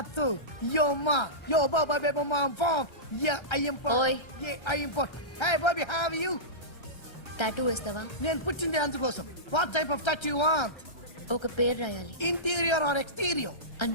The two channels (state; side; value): late; right; 1.3 ms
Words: Yo, ma. Yo, baba, baby, mom, funk. Yeah, I am funk. Oi. Yeah, I am funk. Hey, Bobby, how are you? Tattoo వేస్తావా? నేను పుట్టింది అందుకోసం. What type of tattoo you want? ఒక పేరు రాయాలి. Interior or exterior?